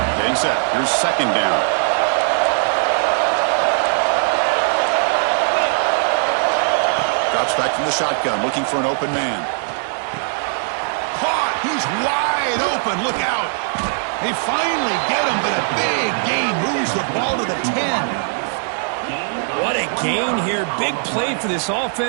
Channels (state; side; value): silent; left; 61 dB below the other